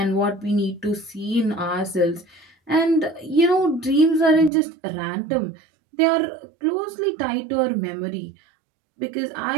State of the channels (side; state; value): left; drops out; at 4.5 s